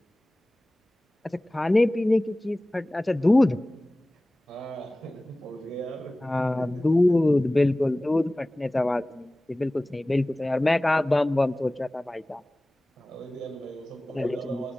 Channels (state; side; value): normal; both; correlation 0.98